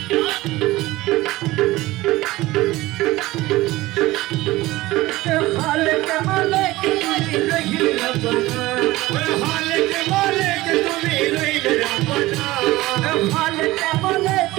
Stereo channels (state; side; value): quieter; left; 18.6 dB